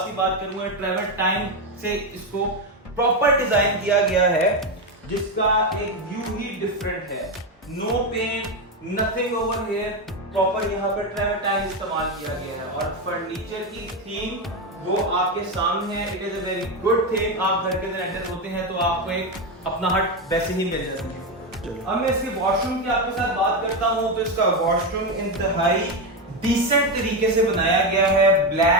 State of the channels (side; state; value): both; normal; correlation 0.10